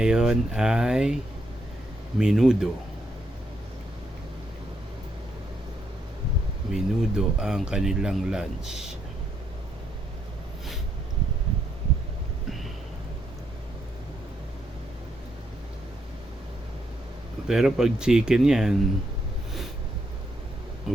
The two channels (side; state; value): both; normal; correlation 0.77